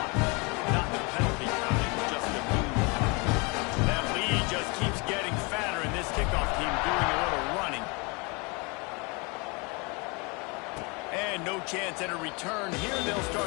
Not the penalty kind, just the move. That lead just keeps getting fatter, and this kickoff team doing a little running. And no chance at a return here. They'll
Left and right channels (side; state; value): right; quieter; 29.6 dB